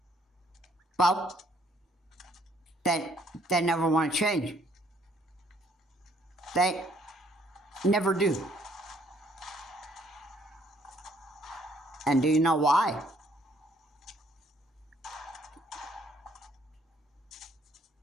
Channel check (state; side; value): normal; both; correlation 0.65